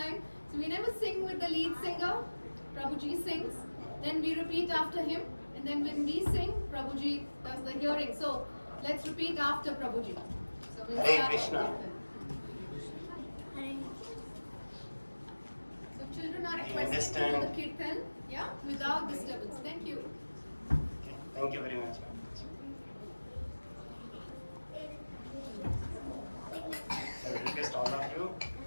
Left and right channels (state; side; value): inverted; both; correlation -1.00